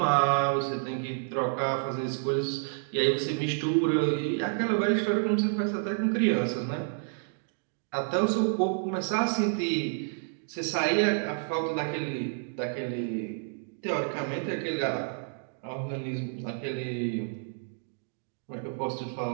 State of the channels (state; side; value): silent; left; digital silence